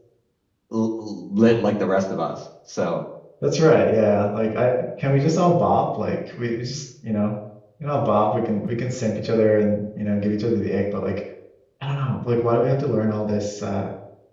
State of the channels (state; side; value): identical; both; correlation 1.00